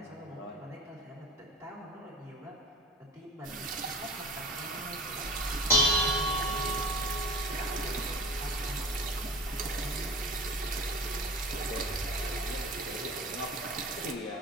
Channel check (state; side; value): normal; both; correlation 0.37